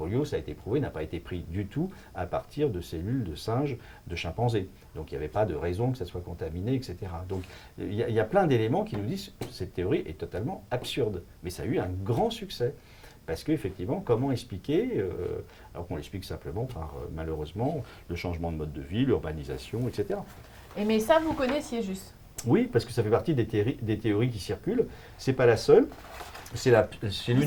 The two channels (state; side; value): identical; both; correlation 1.00